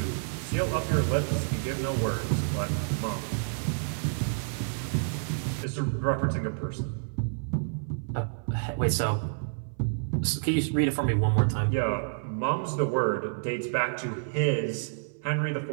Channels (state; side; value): silent; left; 59 dB below the other